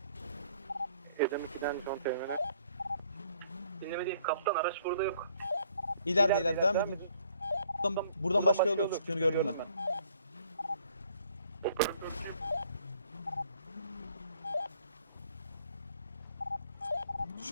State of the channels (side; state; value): both; inverted; correlation -0.62